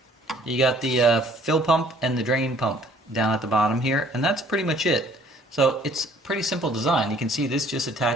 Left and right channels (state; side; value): normal; both; correlation 0.57